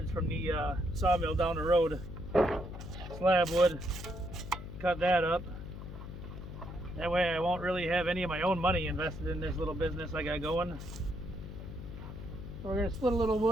from the sawmill down the road. Slab wood, cut that up. That way I won't really have any of my own money invested in this little business I got going. So we're going to split a little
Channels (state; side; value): noise; left; hum, 10 dB below the sound